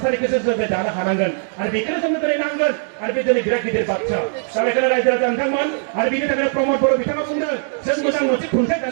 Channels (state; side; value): silent; left; 59 dB below the other